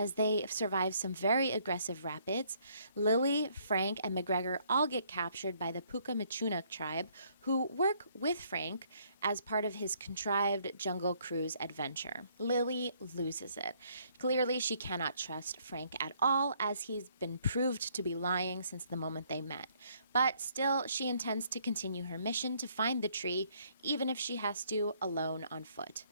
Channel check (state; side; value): inverted; both; correlation -0.66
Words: they survive some very aggressive rapids. Lily, Frank, and McGregor all get captured by the Puka-Machunuk tribe, who work with Frank as part of his contrived Jungle Cruise adventure. Lily loses it. Clearly, she cannot trust Frank at all, as he's been proved to be lying since the moment they met. But still, she intends to continue her mission to find the tree, even if she has to alone on foot.